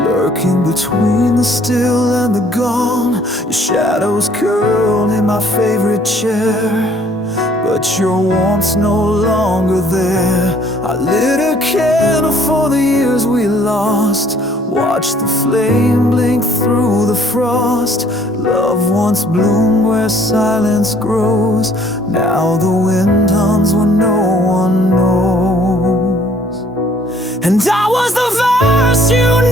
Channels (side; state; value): both; normal; correlation 0.60